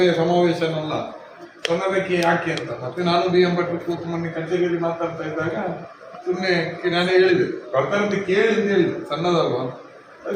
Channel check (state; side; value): identical; both; correlation 1.00